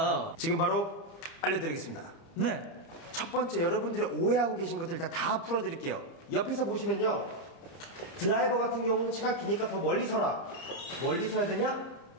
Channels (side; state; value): right; late; 30 ms